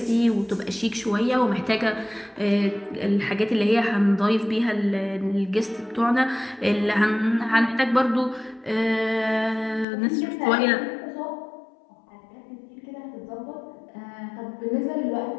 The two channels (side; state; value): right; drops out; at 9.9 s